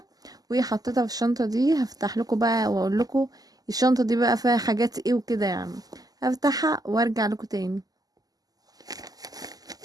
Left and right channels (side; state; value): left; late; 0.18 ms